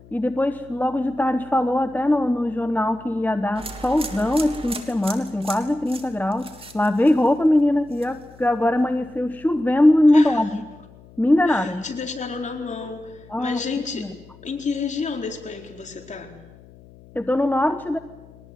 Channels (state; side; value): noise; left; hum, 24 dB below the sound